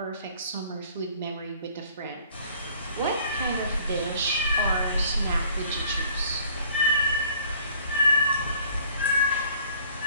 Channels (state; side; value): inverted; both; correlation -0.54